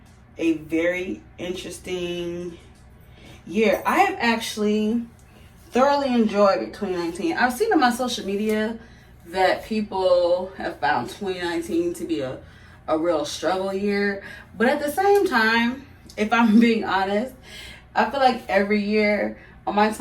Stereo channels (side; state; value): both; identical; correlation 1.00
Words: a very interesting year. I have actually thoroughly enjoyed 2019. I've seen on my social media that people have found 2019 to be a real struggle year. But at the same time, if I'm being honest, I feel like every year on my